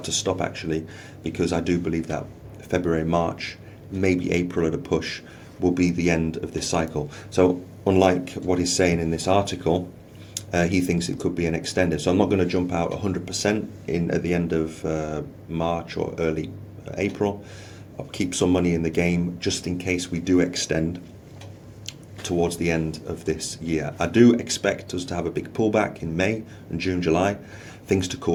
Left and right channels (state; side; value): identical; both; correlation 1.00